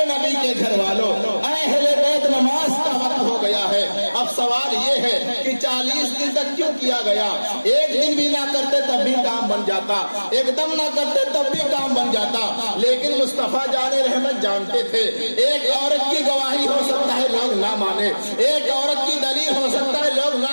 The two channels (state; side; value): inverted; both; correlation -1.00